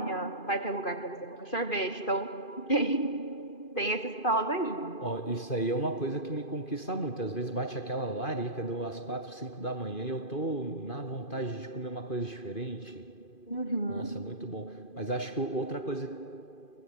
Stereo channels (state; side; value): late; right; 2.5 ms